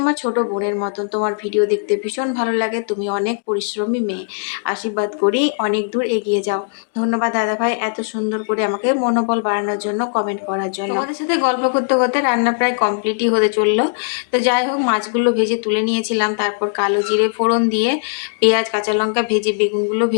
ছোট বোনের মতন, তোমার ভিডিও দেখতে ভীষণ ভালো লাগে, তুমি অনেক পরিশ্রমী মেয়ে, আশীর্বাদ করি অনেক দূর এগিয়ে যাও। ধন্যবাদ দাদাভাই, এত সুন্দর করে আমাকে মনোবল বাড়ানোর জন্য, কমেন্ট করার জন্য। তোমাদের সাথে গল্প করতে করতে রান্না প্রায় কমপ্লিটই হতে চললো। তো যাই হোক, মাছগুলো ভেজে তুলে নিয়েছিলাম, তারপর কালো জিরে ফোড়ন দিয়ে পেঁয়াজ কাঁচা লঙ্কা ভেজে বেগুনগুলো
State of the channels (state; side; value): silent; right; digital silence